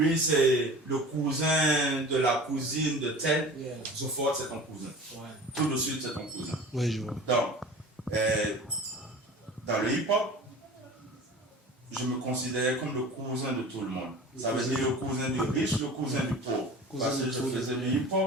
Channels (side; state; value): both; normal; correlation 0.38